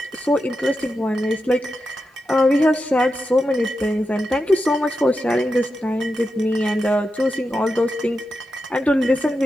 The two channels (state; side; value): normal; both; correlation 0.89